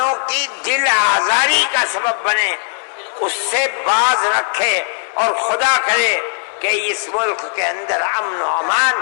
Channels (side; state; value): right; silent; 64 dB below the other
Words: کی دل آزاری کا سبب بنے اس سے باز رکھے، اور خدا کرے کہ اس ملک کے اندر امن و